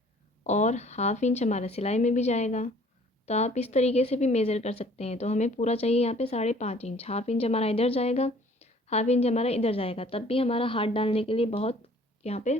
और हाफ इंच हमारा सिलाई में भी जाएगा। तो आप इस तरीके से भी मेज़र कर सकते हैं। तो हमें पूरा चाहिए यहाँ पे 5.5 इंच। हाफ इंच हमारा इधर जाएगा, हाफ इंच हमारा इधर जाएगा, तब भी हमारा हाथ डालने के लिए बहुत यहाँ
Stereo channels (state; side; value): normal; both; correlation 0.55